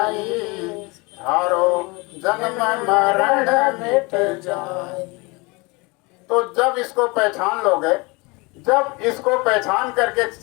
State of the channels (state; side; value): quieter; right; 26.4 dB